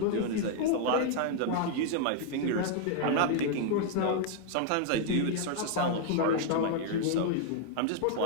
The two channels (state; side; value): different; both; correlation 0.00